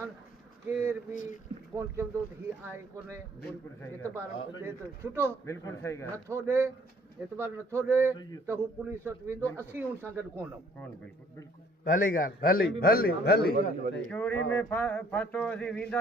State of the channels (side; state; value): both; normal; correlation 0.60